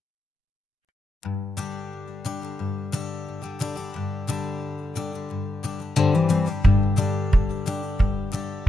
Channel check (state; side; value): normal; both; correlation 0.85